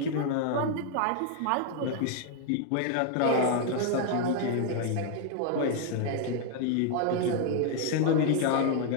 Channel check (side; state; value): both; different; correlation 0.00